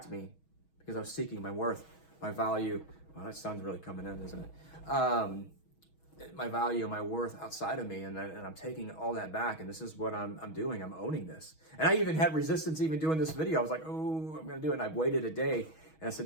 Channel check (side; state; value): right; late; 6.3 ms